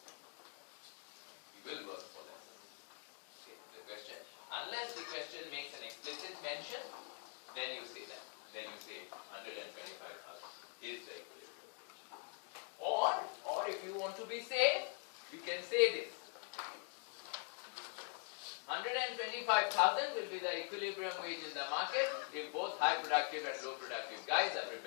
He will work for less. Okay. The question, unless the question makes an explicit mention, then you say that. Then you say 125,000 is the equilibrium. Or if you want to be safe, you can say this. 125,000 will be the equilibrium wage in the market if both high productive and low productive guys are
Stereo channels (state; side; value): quieter; right; 37.8 dB